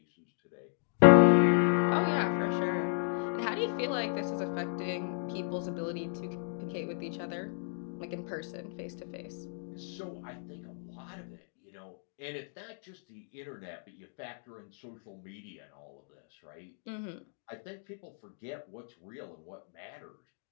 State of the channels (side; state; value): right; silent; digital silence